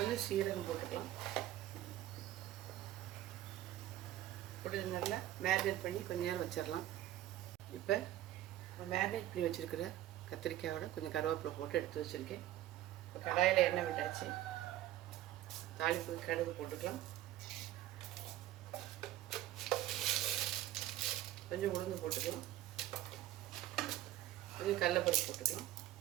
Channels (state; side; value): quieter; left; 13.9 dB